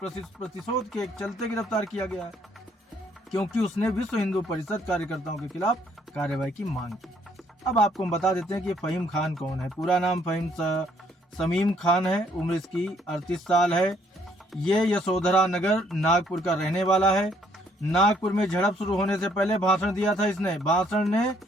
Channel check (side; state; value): both; normal; correlation 0.66